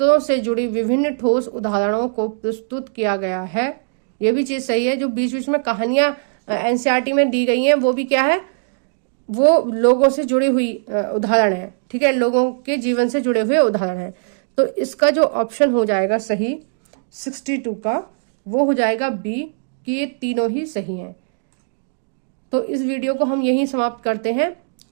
से जुड़ी विभिन्न ठोस उदाहरणों को प्रस्तुत किया गया है, ये भी चीज सही है। जो बीच बीच में कहानियां एनसीईआरटी में दी गई हैं वो भी क्या है, वो लोगों से जुड़ी हुई उदाहरण है, ठीक है, लोगों के जीवन से जुड़े हुए उदाहरण है। तो इसका जो ऑप्शन हो जाएगा सही 62 का, वो हो जाएगा बी, कि ये तीनों ही सही हैं। तो इस वीडियो को हम यहीं समाप्त करते हैं।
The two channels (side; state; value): left; silent; digital silence